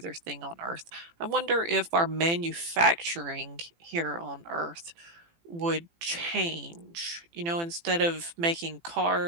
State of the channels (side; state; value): left; late; 18 ms